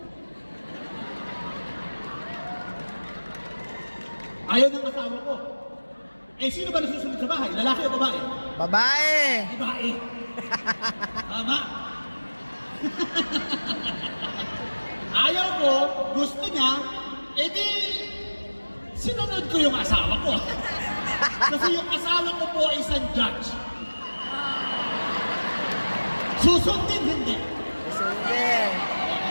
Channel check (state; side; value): inverted; both; correlation -1.00